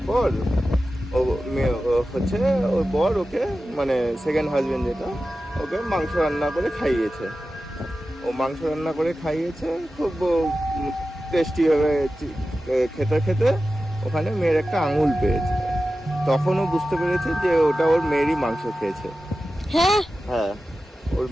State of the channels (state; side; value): normal; both; correlation 0.94